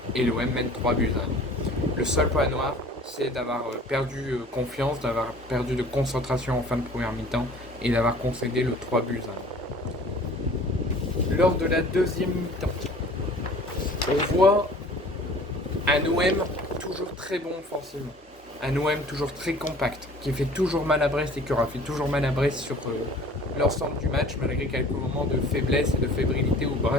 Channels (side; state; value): both; normal; correlation 0.48